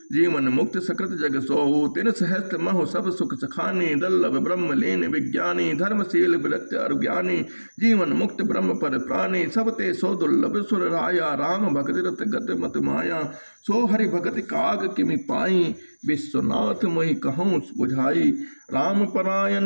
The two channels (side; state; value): both; inverted; correlation -1.00